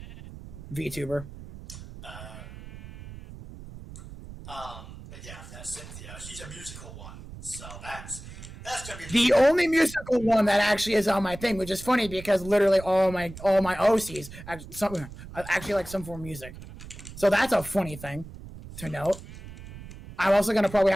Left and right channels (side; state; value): right; noise; rumble, 14 dB below the sound